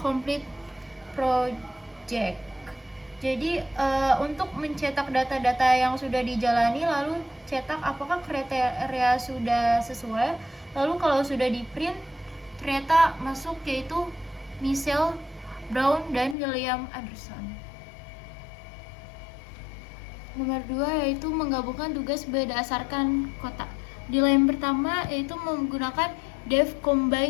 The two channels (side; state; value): right; drops out; at 16.4 s